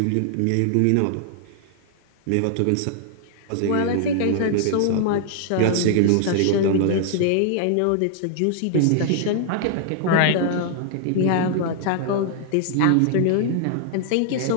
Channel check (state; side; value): different; both; correlation 0.00